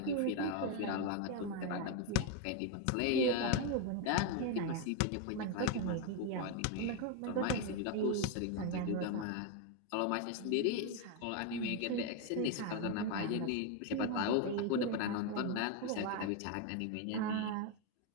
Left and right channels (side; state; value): both; different; correlation 0.01